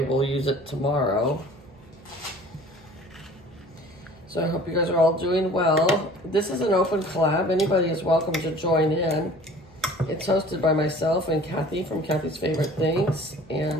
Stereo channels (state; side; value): noise; right; hum, 26 dB below the sound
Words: use it tomorrow. So I hope you guys are all doing well. This is an open collab. Anybody is welcome to join in. It's hosted by myself and Kathy from Kathy's Favorite Things.